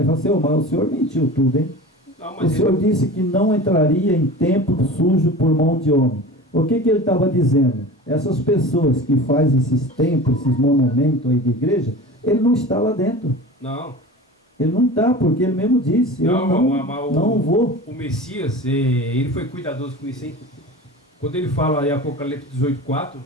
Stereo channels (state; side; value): normal; both; correlation 0.35